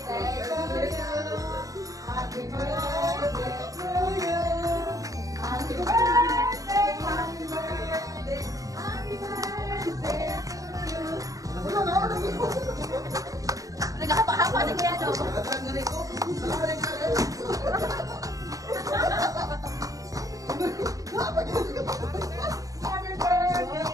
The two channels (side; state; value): left; late; 0.17 ms